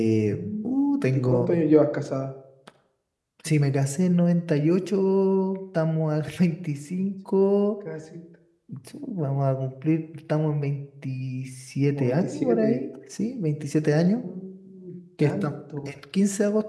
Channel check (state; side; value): identical; both; correlation 1.00